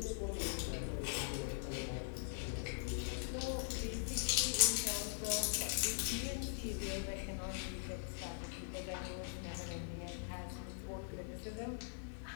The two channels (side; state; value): right; silent; digital silence